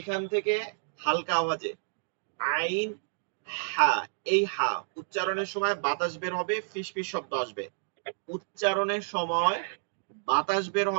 থেকে হালকা আওয়াজে আইন হা, এই হা উচ্চারণের সময় বাতাস বের হবে, ফিসফিস শব্দ আসবে। উচ্চারণের সময় বাতাস বের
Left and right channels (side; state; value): left; silent; digital silence